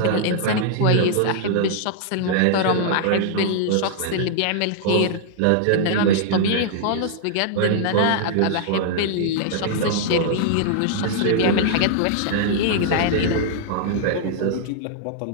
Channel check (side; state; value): both; different; correlation -0.01